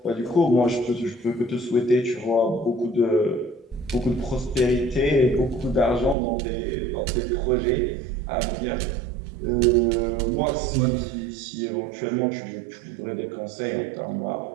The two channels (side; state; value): left; drops out; at 6.2 s